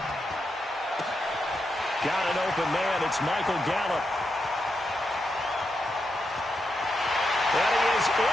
Got an open man. It's Michael Gallup. And he is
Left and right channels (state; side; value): normal; both; correlation 0.85